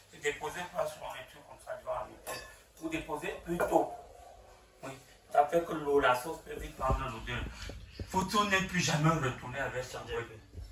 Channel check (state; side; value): identical; both; correlation 1.00